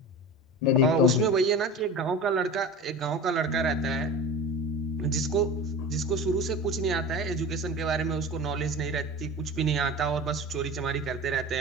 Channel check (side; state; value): both; normal; correlation 0.33